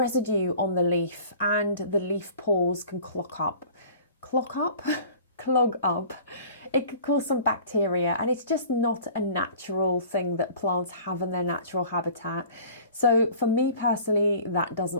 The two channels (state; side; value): inverted; both; correlation -0.46